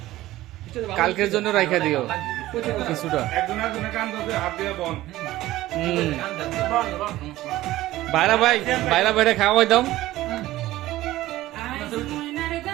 কালকের জন্য রাইখা দিও কিছুটা। বাইরা ভাই, বাইরা বাইরে খাওয়াই দাও।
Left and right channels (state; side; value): quieter; left; 16.1 dB